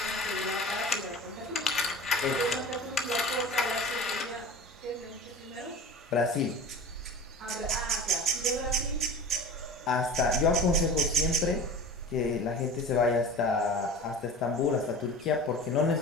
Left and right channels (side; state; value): both; normal; correlation 0.36